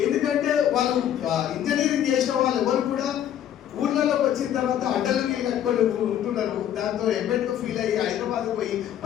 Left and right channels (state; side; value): quieter; right; 10.5 dB